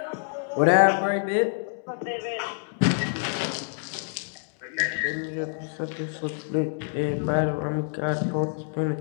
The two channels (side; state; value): right; silent; digital silence